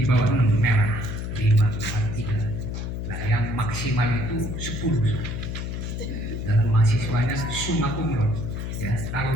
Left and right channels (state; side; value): noise; left; hum, 4 dB below the sound